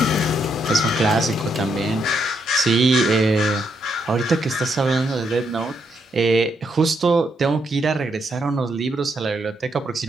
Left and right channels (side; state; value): both; normal; correlation 0.77